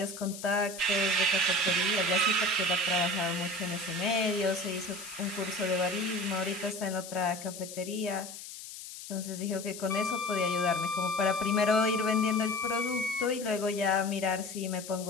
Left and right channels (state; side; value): noise; left; hiss, 12 dB below the sound